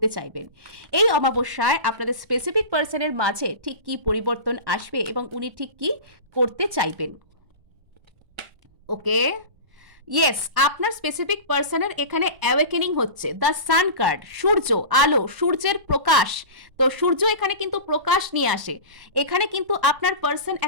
চাইবেন এই অমাবস্যায়। আপনাদের স্পেসিফিক পার্সনের মাঝে ঠিক কি পরিবর্তন আসবে এবং উনি ঠিক কি করতে চাইবেন। ওকে, ইয়েস, আপনার স্পেসিফিক পার্সনের এখানে অ্যাওয়েকেনিং হচ্ছে দ্য সান কার্ড, সূর্য, আলো, সূর্যের প্রকাশ। তো সূর্য এখানে কিন্তু প্রকাশ নিয়ে আসে, এখানে কিন্তু আপনার পার্সন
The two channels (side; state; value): left; late; 1.0 ms